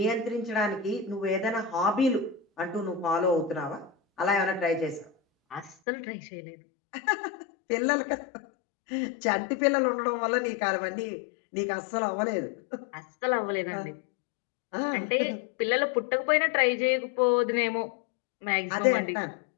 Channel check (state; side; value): drops out; right; at 5.8 s